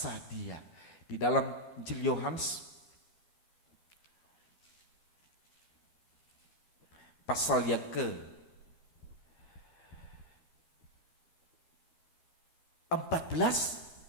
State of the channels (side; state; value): right; late; 12 ms